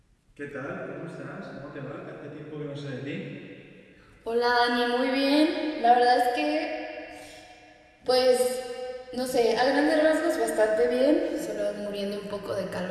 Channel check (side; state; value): both; identical; correlation 1.00